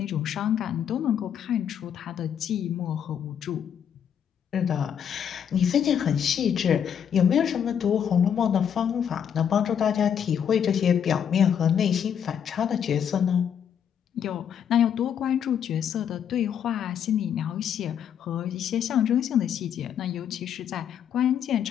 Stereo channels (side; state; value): right; quieter; 8.5 dB